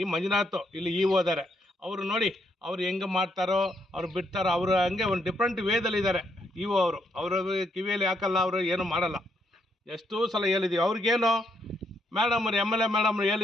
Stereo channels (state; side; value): normal; both; correlation 0.75